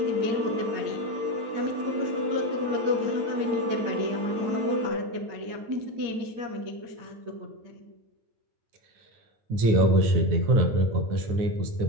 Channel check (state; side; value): late; left; 9.4 ms